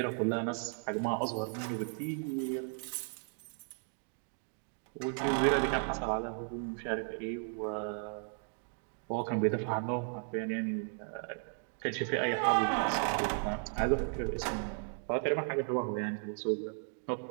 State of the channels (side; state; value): left; silent; 54 dB below the other